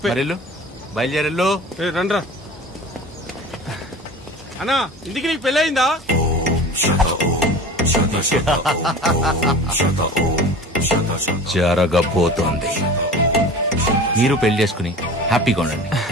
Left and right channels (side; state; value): both; normal; correlation 0.37